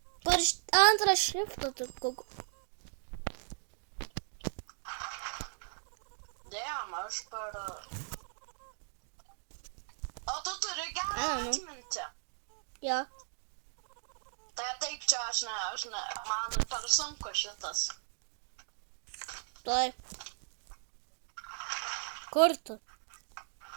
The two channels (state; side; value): silent; left; digital silence